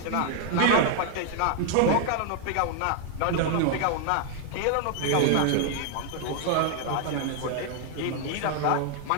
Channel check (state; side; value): different; both; correlation 0.00